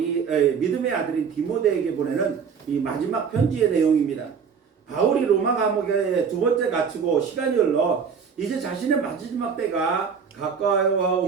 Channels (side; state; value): left; quieter; 6.4 dB